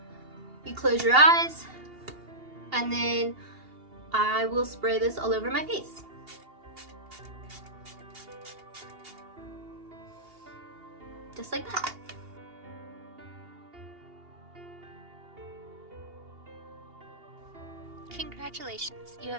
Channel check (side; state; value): left; late; 2.8 ms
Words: You close your eyes, and then I will spray this all over my face. Just like that. Congratulations, you